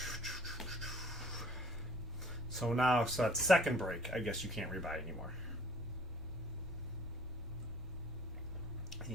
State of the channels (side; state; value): both; normal; correlation 0.54